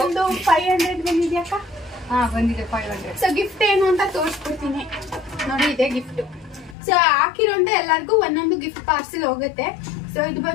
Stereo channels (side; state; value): right; drops out; at 6.8 s